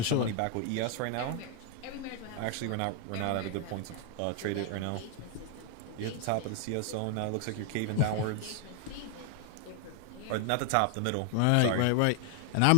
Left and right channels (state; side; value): different; both; correlation 0.00